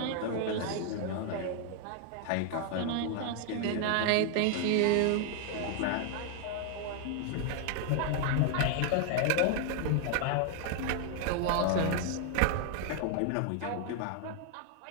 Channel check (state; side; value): different; both; correlation 0.00